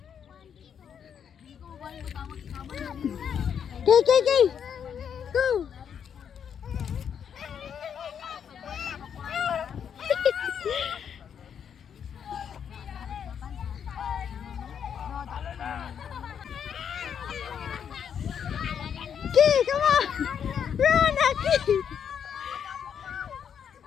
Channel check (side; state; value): right; quieter; 7.9 dB